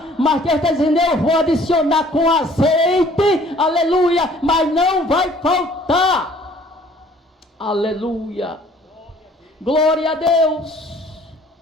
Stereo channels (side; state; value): both; normal; correlation 0.56